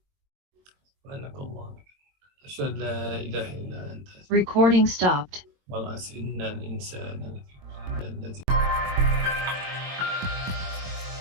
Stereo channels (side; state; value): left; late; 22 ms